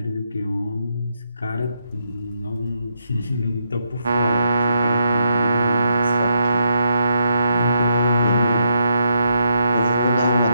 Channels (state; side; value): inverted; both; correlation -0.80